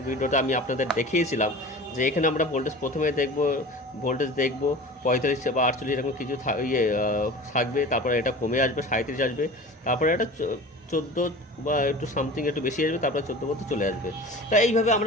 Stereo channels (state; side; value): normal; both; correlation 0.37